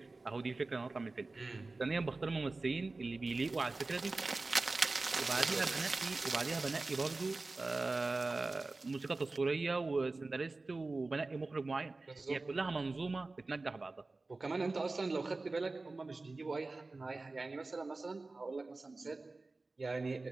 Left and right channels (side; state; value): left; quieter; 3.4 dB